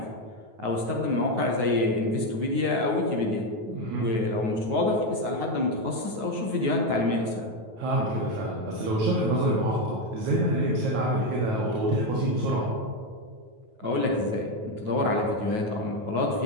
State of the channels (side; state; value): left; late; 9.3 ms